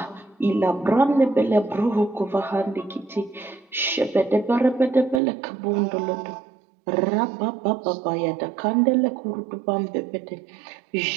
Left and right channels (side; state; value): left; drops out; at 5.2 s